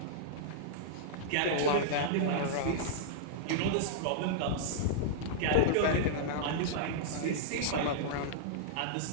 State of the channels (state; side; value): different; both; correlation -0.02